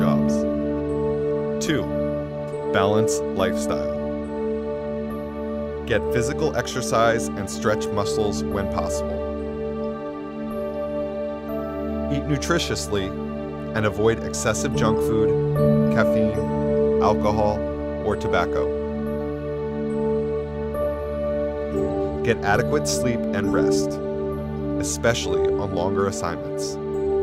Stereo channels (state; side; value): identical; both; correlation 1.00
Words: 2. Balance lifestyle. Get physical exercise and stretch muscles when possible. Eat nutritiously and avoid excessive junk food, caffeine, alcohol, or tobacco. Get adequate sleep and rest, especially on longer assignments.